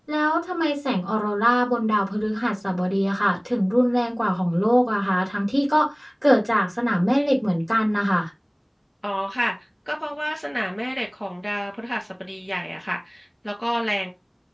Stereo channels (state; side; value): identical; both; correlation 1.00